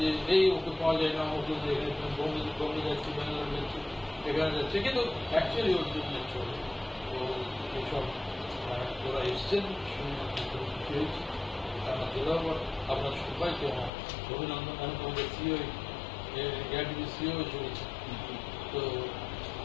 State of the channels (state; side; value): drops out; right; at 13.9 s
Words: এই ওকে পাওয়া যায় না, ওকে বম্বে যাচ্ছি, ব্যাঙ্গালোর যাচ্ছি, এখানে যাচ্ছে, কিন্তু অ্যাকচুয়ালি ওর জন্য চলে। তো এইসব ওরা এসছেন খুশি হয়েছি। আপনার সবাইকে আমার অভিনন্দন। আমি তোমাদের সিও এআরডিবি সিও চলেছে। তো